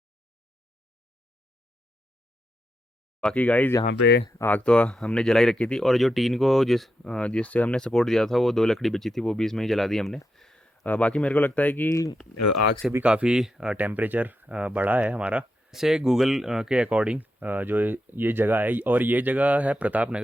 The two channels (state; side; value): normal; both; correlation 0.85